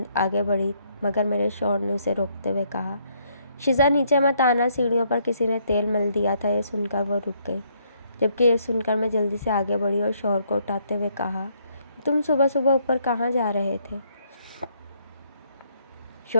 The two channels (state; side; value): inverted; both; correlation -0.70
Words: آگے بڑھی، مگر میرے شوہر نے اسے روکتے ہوئے کہا، شیزا نیچے مت آنا، سیڑھیوں پر کسی نے تیل مل دیا تھا۔ یہ سن کر وہ رک گئی، جبکہ یہ سن کر میں جلدی سے آگے بڑھی اور شوہر کو اٹھاتے ہوئے کہا، تم صبح صبح اوپر کہاں جا رہے تھے؟